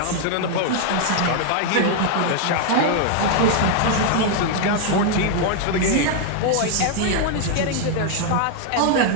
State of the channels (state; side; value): different; both; correlation 0.00